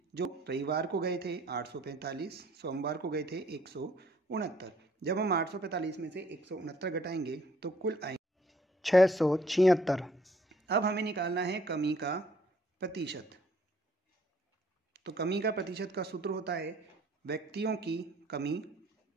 जो रविवार को गए थे 845, सोमवार को गए थे 169। जब हम 845 में से 169 घटाएंगे तो कुल आएंगे 676। अब हमें निकालना है कमी का प्रतिशत। तो कमी का प्रतिशत का सूत्र होता है व्यक्तियों की कमी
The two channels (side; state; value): both; normal; correlation 0.61